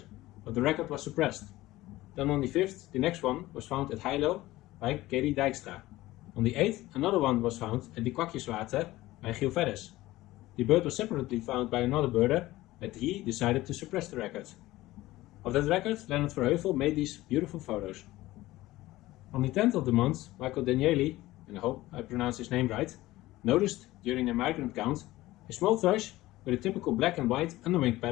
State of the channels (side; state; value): right; quieter; 17.4 dB